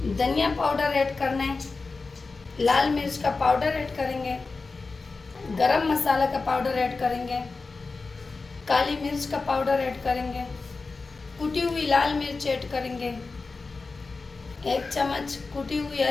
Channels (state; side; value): quieter; right; 4.0 dB